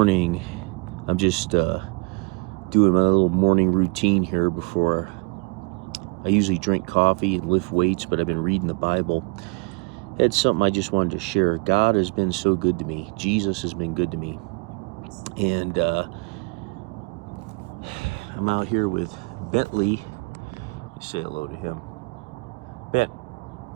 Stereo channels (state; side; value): quieter; left; 31.2 dB